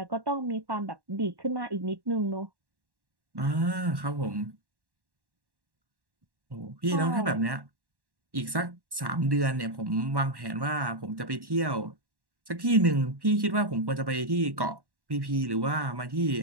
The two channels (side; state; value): left; late; 1.1 ms